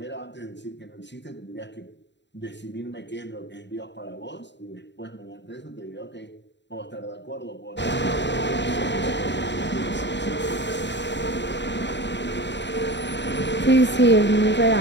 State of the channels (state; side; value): late; right; 0.52 ms